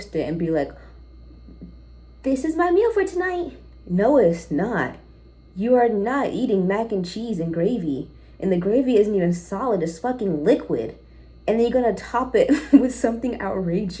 it and be like, this is my meal for tonight. No, it's not. You are not eating mac and cheese and gravy. And the gravy isn't even solid, it's fucking liquid. And then you're gonna top it with something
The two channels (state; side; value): identical; both; correlation 1.00